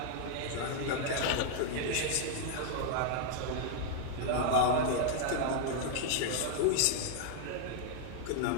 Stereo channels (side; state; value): both; different; correlation 0.00